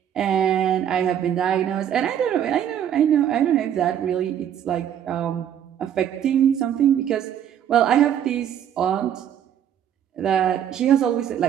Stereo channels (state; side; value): quieter; left; 9.8 dB